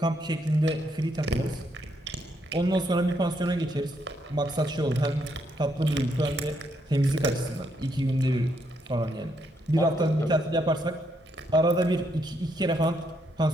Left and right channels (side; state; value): both; normal; correlation 0.75